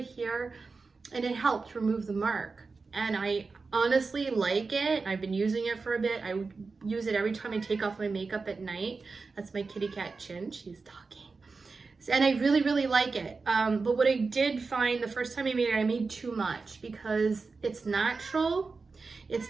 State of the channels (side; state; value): left; quieter; 4.3 dB